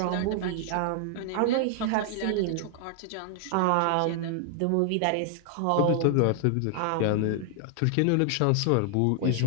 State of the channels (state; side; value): different; both; correlation 0.00